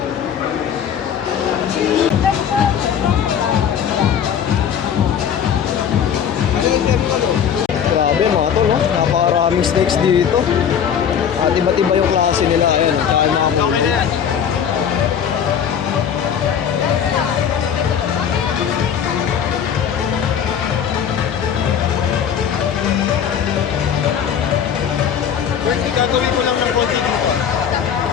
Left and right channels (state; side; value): quieter; right; 8.3 dB